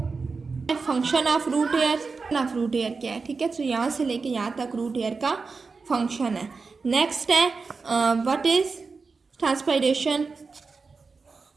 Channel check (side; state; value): left; quieter; 4.5 dB